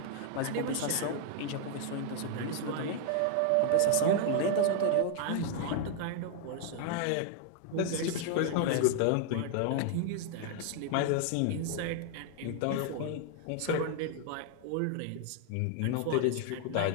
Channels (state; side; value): different; both; correlation 0.00